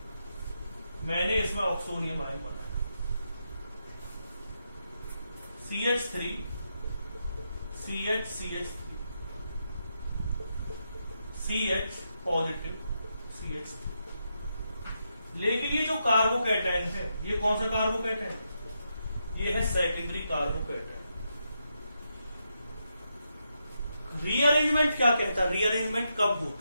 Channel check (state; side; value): inverted; both; correlation -0.83